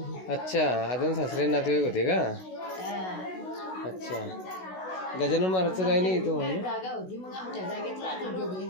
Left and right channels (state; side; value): late; right; 16 ms